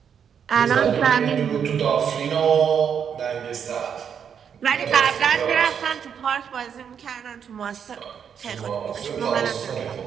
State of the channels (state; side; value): quieter; left; 7.7 dB